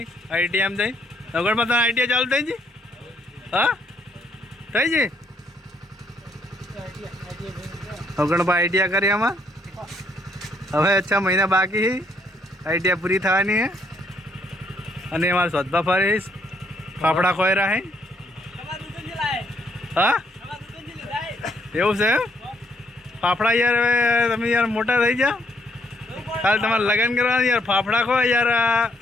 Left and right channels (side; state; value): both; normal; correlation 0.70